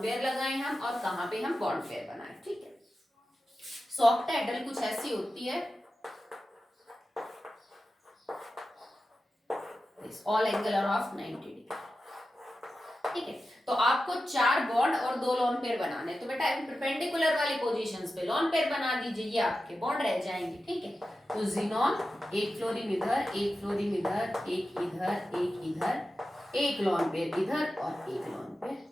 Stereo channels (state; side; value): normal; both; correlation 0.92